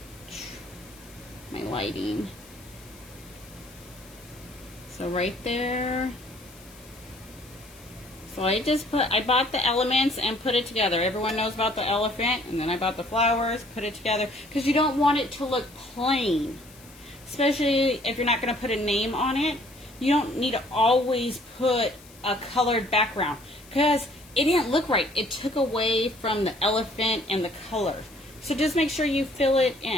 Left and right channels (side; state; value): left; noise; hiss, 23 dB below the sound